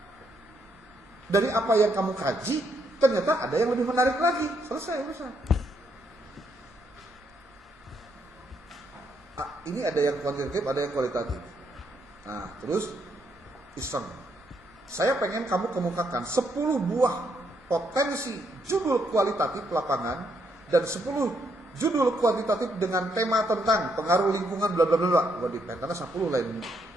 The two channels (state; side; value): normal; both; correlation 0.75